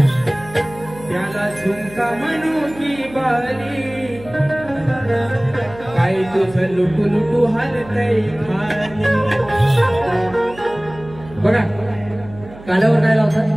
झुमका म्हणू की बाली काय तुझं लुटू हालतय खाली. बघा कालावर काय लावतात?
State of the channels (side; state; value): right; noise; hum, 18 dB below the sound